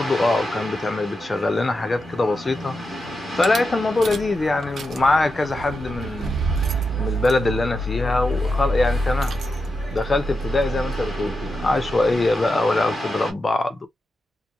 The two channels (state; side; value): normal; both; correlation 0.88